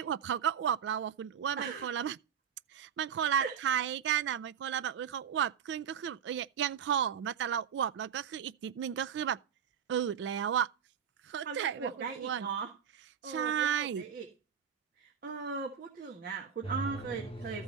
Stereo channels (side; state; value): left; quieter; 8.1 dB